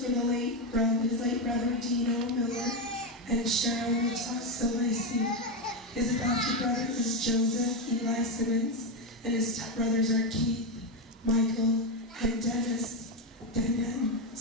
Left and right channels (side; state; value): both; normal; correlation 0.09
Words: were his late brother Dino Miller and Cheryl Natak Silvessi. His adopted brother is Joseph Eli Simmons, and his stepbrothers are Keith, Michael, and Dennis Denden